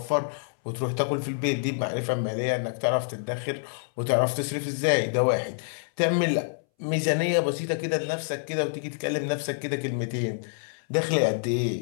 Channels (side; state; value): right; silent; 60 dB below the other